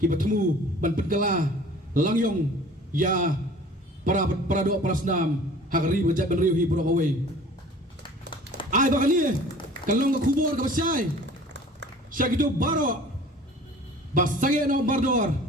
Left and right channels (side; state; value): both; normal; correlation 0.46